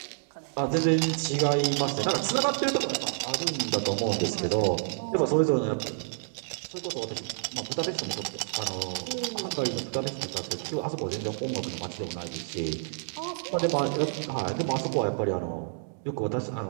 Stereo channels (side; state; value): left; silent; digital silence